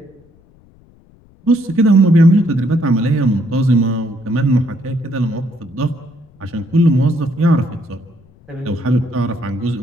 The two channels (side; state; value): left; noise; rumble, 29 dB below the sound